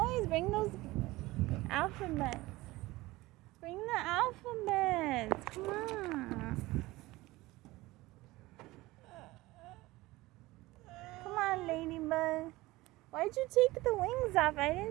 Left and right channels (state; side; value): quieter; left; 19.6 dB